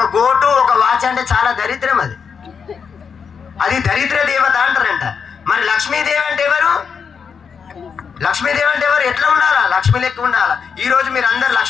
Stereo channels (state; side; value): quieter; right; 6.3 dB